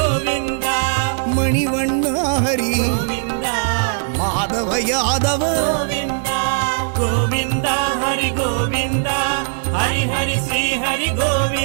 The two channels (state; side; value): silent; left; digital silence